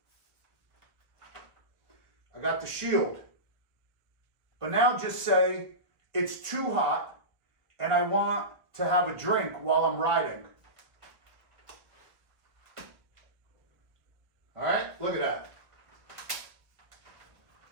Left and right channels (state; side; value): late; left; 1.2 ms